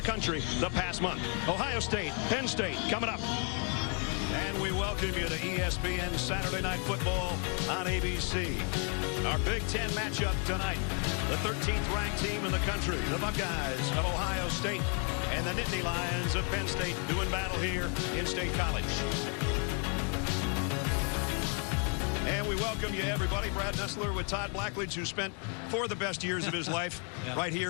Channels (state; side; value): quieter; right; 39.4 dB